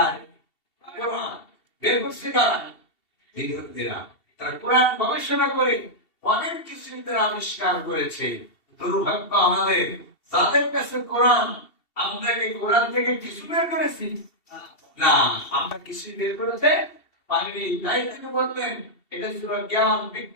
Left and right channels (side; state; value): right; late; 2.7 ms